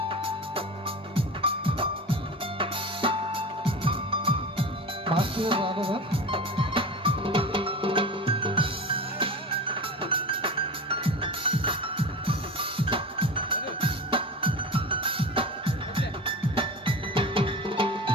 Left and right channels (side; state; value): both; normal; correlation 0.30